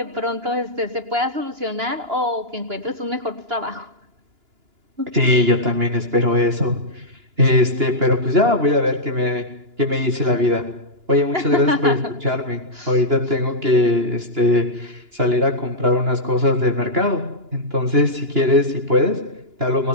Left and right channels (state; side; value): late; left; 2.9 ms